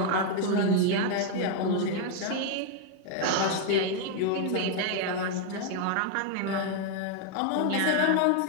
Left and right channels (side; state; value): both; different; correlation 0.01